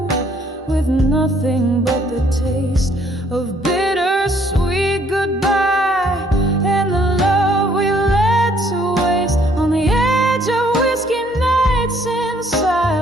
with nothing but the taste of bittersweet goodbye and the love we let to waste. On the edge of whiskey nights in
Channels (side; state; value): both; normal; correlation 0.64